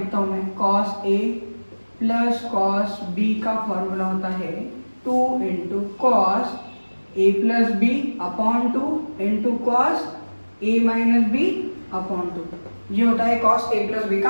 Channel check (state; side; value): inverted; both; correlation -1.00